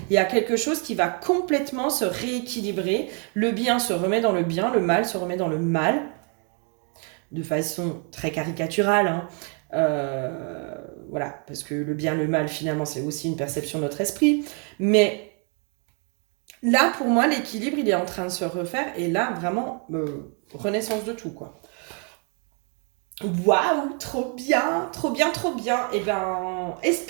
Il y a quelque chose qui va complètement se rééquilibrer, le bien se remet dans le bien, le mal se remet dans le mal, de façon très caricaturale, hein. Voilà, parce que le bien, le mal finalement c'est aussi une perception de notre esprit, mais là, pour moi, l'équilibre, il est en train de se refaire. Et là, vraiment, renaissance de tout, quoi. Waouh, trop bien, trop bien, trop bien. Eh bien,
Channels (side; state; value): left; quieter; 38.9 dB